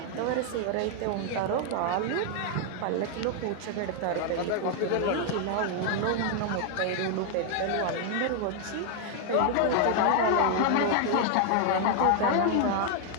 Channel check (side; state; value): both; different; correlation 0.00